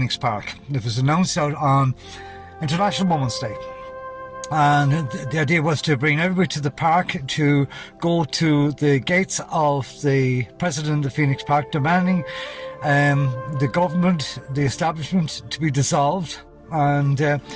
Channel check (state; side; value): identical; both; correlation 1.00